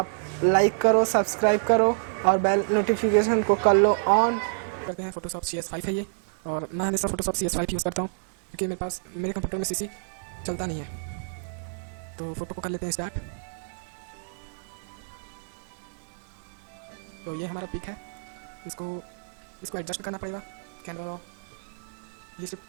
लाइक करो, सब्सक्राइब करो और बेल नोटिफिकेशन को कर लो ऑन। करते हैं फ़ोटोशॉप CS5 है ये, और मैं हमेशा फ़ोटोशॉप CS5 यूज़ करता हूँ क्योंककि मेरे पास मेरे कंप्यूटर में CC चलता नहीं है। तो फ़ोटो को कर लेते हैं स्टार्ट। तो ये हमारा पिक है, इसको एडजस्ट करना पड़ेगा। कैमरा ये सिर्फ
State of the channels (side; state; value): left; silent; digital silence